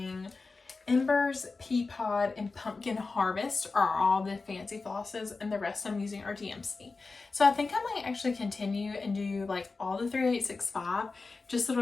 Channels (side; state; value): right; quieter; 4.0 dB